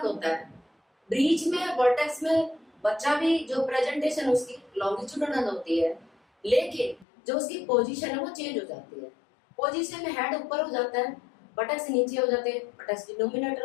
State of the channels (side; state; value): right; drops out; at 7.1 s